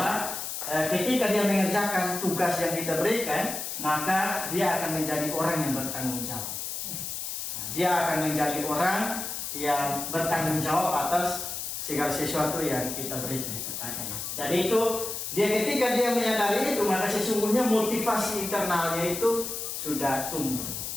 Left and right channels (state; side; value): noise; left; hiss, 5 dB below the sound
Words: ketika dia mengerjakan tugas yang kita berikan, maka dia akan menjadi orang yang bertanggung jawab. Dia akan menjadi orang yang bertanggung jawab atas segala sesuatu yang kita berikan kepadanya. Jadi itu ketika dia menyadari itu, maka sesungguhnya motivasi internalnya itu sudah tumbuh